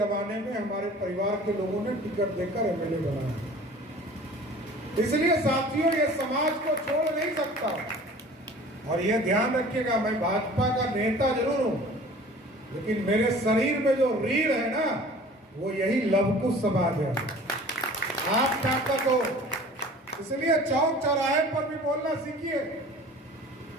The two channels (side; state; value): both; normal; correlation 0.45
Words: में हमारे परिवार के लोगों ने टिकट देकर MLA बनाया। इसलिए साथियों, ये समाज को छोड़ नहीं सकता। और ये ध्यान रखिएगा, मैं भाजपा का नेता जरूर हूं, लेकिन मेरे शरीर में जो रीढ़ है ना, वो यही लवकुश समाज है। आप ताकत हो, इसलिए चौक चौराहे पर भी बोलना सीखिए।